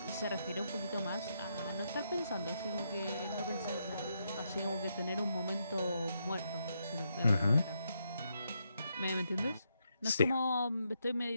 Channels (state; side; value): inverted; both; correlation -0.80